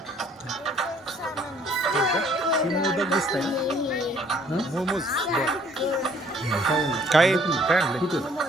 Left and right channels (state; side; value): normal; both; correlation 0.60